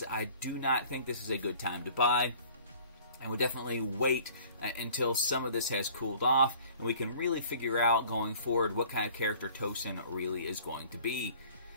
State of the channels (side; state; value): both; inverted; correlation -0.51